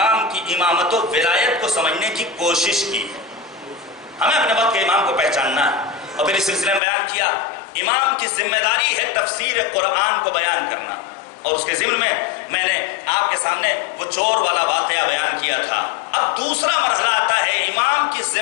کی امامت و ولایت کو سمجھنے کی کوشش کی ہے۔ ہمیں اپنے وقت کے امام کو پہچاننا ہے، اور پھر اس سلسلے میں بیان کیا امام کی ذمہ داری ہے تفسیر قرآن کو بیان کرنا، اور اس کے ضمن میں نے آپ کے سامنے وہ چور والا واقعہ بیان کیا تھا۔ اب دوسرا مرحلہ آتا ہے، امام کی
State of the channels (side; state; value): right; drops out; at 6.8 s